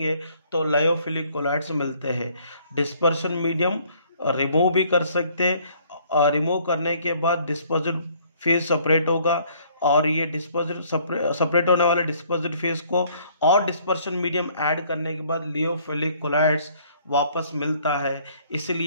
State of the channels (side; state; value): both; inverted; correlation -0.61